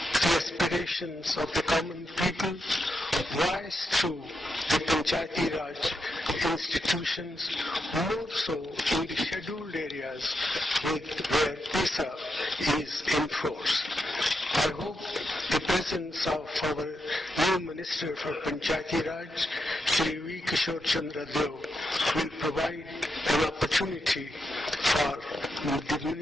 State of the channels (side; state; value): both; normal; correlation 0.84